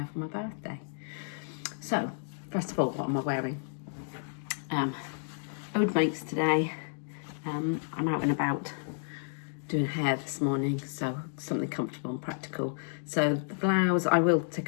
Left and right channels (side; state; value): right; silent; digital silence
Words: for my birthday. So first of all, what am I wearing? Ode makes today. I'm out and about doing hair this morning, so something comfortable and practical. So the blouse, I will